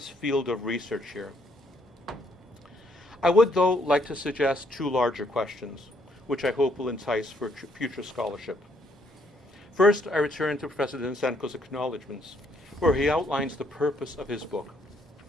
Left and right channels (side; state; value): both; normal; correlation 0.70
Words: field of research here. I would, though, like to suggest two larger questions, which I hope will entice for future scholarship. First, I return to Professor Denysenko's acknowledgments, where he outlines the purpose of his book.